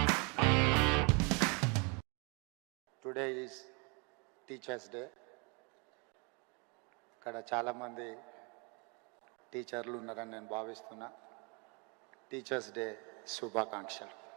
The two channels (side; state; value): left; quieter; 32.5 dB